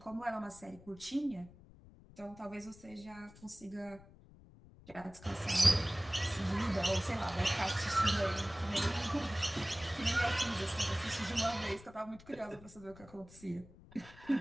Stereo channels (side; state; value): left; noise; rumble, 21 dB below the sound